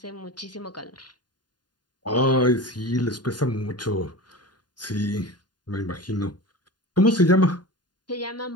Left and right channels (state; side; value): late; right; 0.70 ms